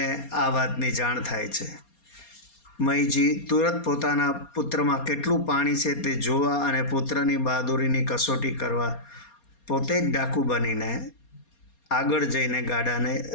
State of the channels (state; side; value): late; right; 4.3 ms